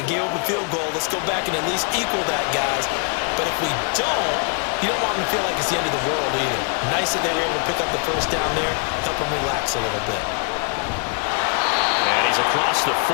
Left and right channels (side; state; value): right; quieter; 38.7 dB